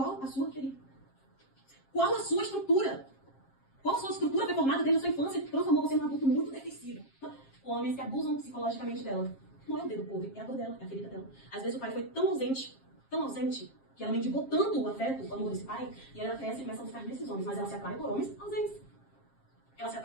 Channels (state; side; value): late; right; 7.4 ms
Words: a sua, querida? Qual a sua estrutura? Qual a sua estrutura foi formada desde a sua infância que transformou você num adulto muito defensivo? Homens que abusam psicologicamente dela. Não é o dedo podre, é a dor dela, é a ferida dela. Às vezes o pai foi tão ausente, que ela mendigou tanto o afeto, o amor desse pai, e ela cresce e começa a buscar nesses homens. Mas ela se atrai por homens ausentes. Ela se